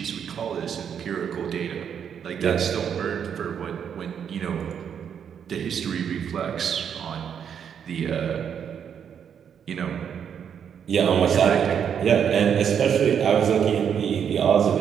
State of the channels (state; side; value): quieter; left; 8.0 dB